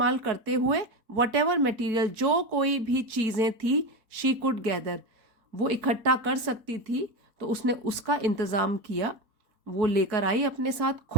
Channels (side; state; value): left; late; 4.6 ms